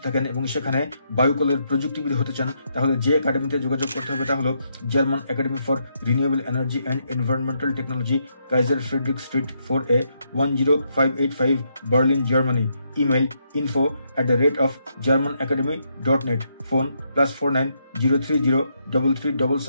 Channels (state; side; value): inverted; both; correlation -0.78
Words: থাকেন এবং সেখানে বায়ুকলের প্রযুক্তিবিদ হতে চান তাহলে যে একাডেমিতে যোগাযোগ করতে হবে তা হলো German academy for renewable energy and environmental technology, Kaiser Friedrich street 4A, 10585, Berlin, Germany. Email info@germanacademy.net। Phone +49 030